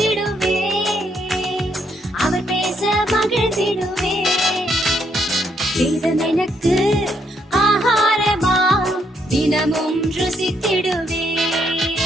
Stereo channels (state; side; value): normal; both; correlation 0.74